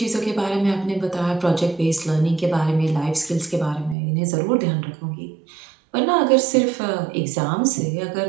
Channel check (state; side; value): drops out; left; at 4.0 s